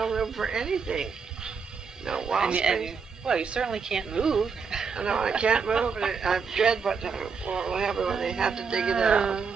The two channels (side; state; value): left; quieter; 5.6 dB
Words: room for anything. No wall space. Well, you certainly can't move. No, I can't move, and I dread what will happen when they have to dig it out.